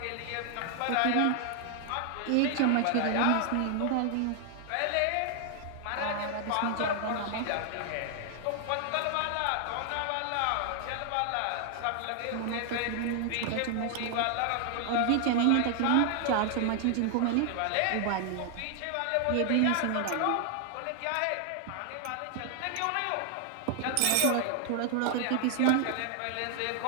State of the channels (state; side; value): different; both; correlation 0.00